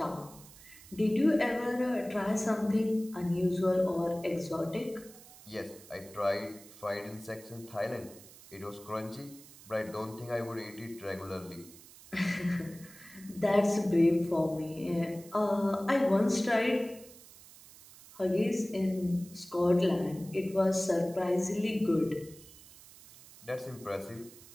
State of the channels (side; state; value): right; noise; hiss, 20 dB below the sound